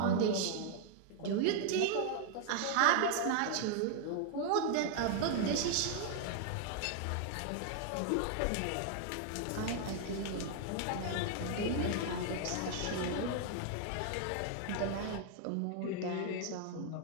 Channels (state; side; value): different; both; correlation 0.00